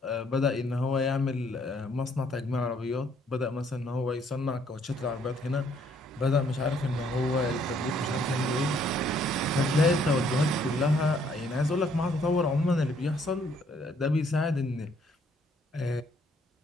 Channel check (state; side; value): normal; both; correlation 0.66